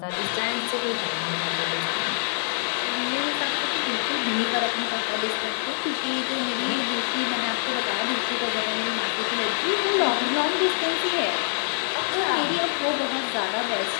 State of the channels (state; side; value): silent; right; digital silence